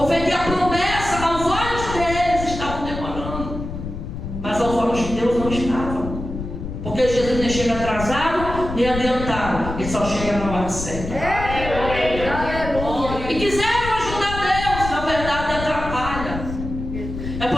a promessa aos olhos deles estavam demorando, mas aos olhos de Deus não estava. Porque Jesus nem chega atrasado, nem adiantado, ele só chega na hora certa. E quiseram ajudar Deus, na verdade atrapalha. É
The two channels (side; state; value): left; noise; rumble, 7 dB below the sound